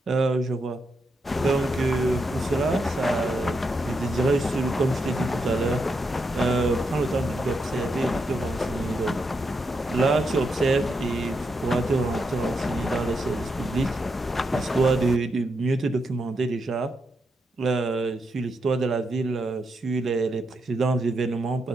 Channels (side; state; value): both; normal; correlation 0.82